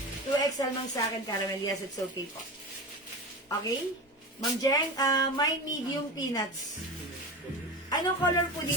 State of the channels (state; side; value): normal; both; correlation 0.27